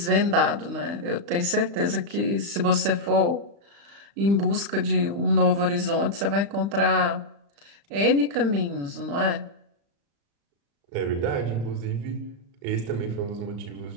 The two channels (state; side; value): late; left; 35 ms